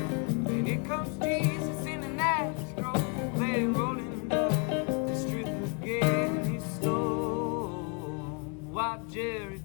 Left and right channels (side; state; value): right; quieter; 36.0 dB